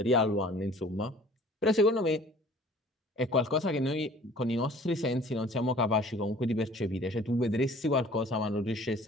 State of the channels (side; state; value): both; normal; correlation 0.50